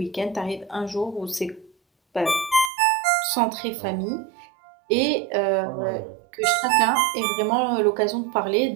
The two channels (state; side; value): drops out; left; at 2.7 s